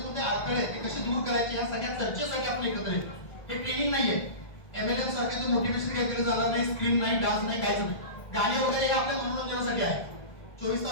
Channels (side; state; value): right; late; 1.6 ms